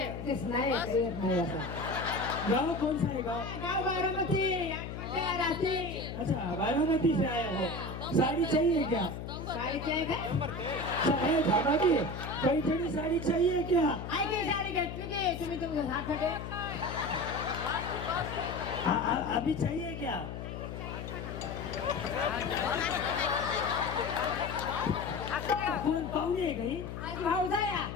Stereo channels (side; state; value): left; noise; hum, 7 dB below the sound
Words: तेच नाही येत नाही असं गाँव कौन सा है गाँव? गाव बारामती रात्री अच्छा बारामती से आए हो. साड़ी चाहिए क्या? साडीचे आहे का साड़ी खाना की पैठणी साड़ी चाहिए क्या? ऐके साडी घेतली की तुम्ही तुमच्या हाताकडे अभी चाहिए क्या? कोण पाहुणे आहे काही? पावसाळ्या